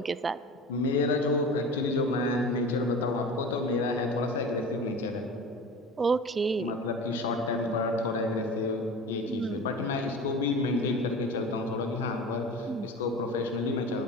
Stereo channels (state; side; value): normal; both; correlation 0.35